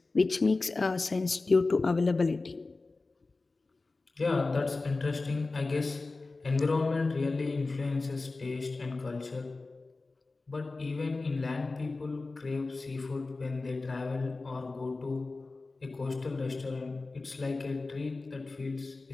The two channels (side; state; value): right; quieter; 3.5 dB